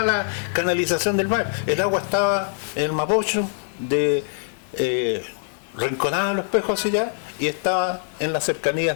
la canalización del mar. El agua estaba en el Mapocho de Rinconada de Los Espejos hacia allá y estaba en las cercanías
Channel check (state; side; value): silent; right; digital silence